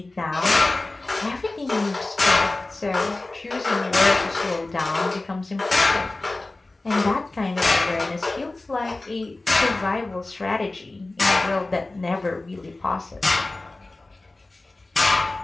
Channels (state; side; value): quieter; right; 3.0 dB